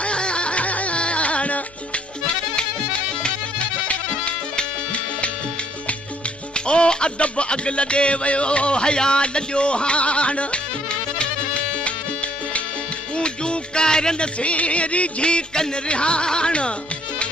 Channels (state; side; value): noise; left; hum, 26 dB below the sound